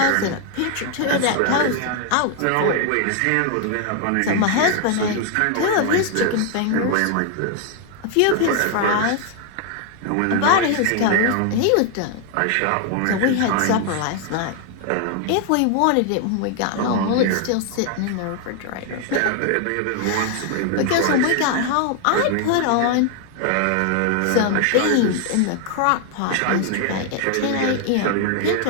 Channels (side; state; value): both; different; correlation 0.00